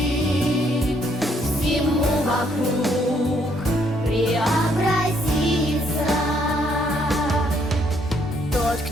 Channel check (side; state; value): both; normal; correlation 0.69